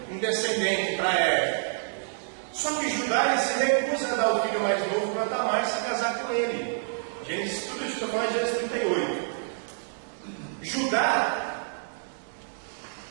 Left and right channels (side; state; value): left; silent; 59 dB below the other